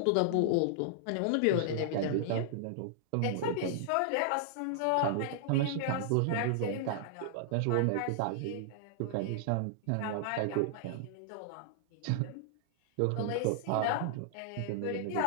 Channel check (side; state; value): both; different; correlation -0.01